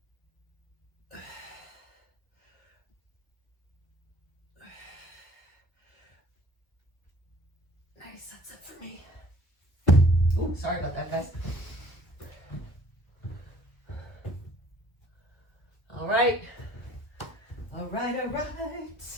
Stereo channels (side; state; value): right; late; 1.1 ms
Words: Nice, that's it for me. Ooh, sorry about that, guys. All right. All right, all